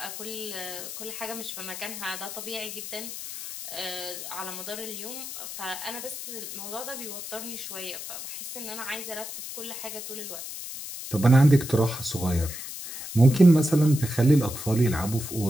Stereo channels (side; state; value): left; noise; hiss, 9 dB below the sound